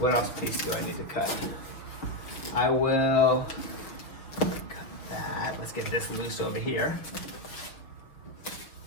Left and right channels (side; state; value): right; late; 6.0 ms